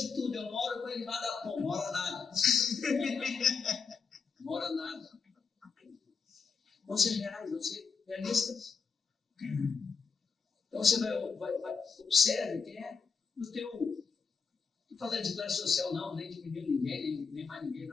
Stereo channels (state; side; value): quieter; right; 5.4 dB